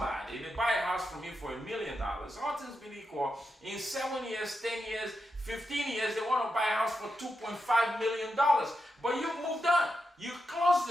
they buy a house from you for $1 million. All things being equal, in 7 years, 10 years, 15 years, they want to buy a house for $2.5 million. But you've moved on. You close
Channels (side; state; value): both; normal; correlation 0.87